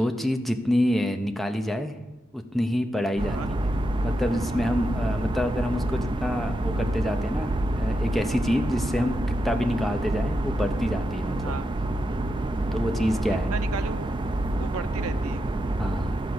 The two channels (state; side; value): normal; both; correlation 0.86